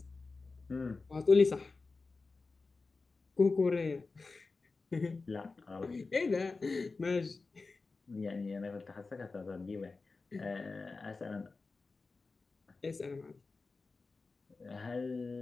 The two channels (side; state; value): right; quieter; 4.0 dB